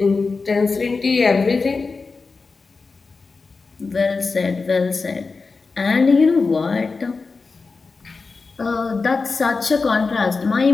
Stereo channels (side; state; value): right; quieter; 4.3 dB